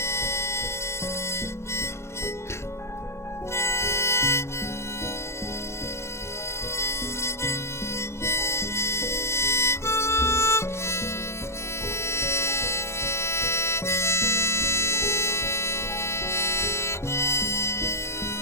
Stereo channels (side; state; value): right; late; 0.13 ms